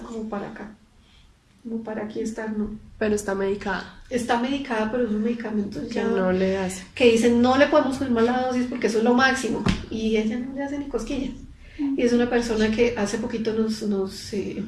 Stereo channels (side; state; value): both; identical; correlation 1.00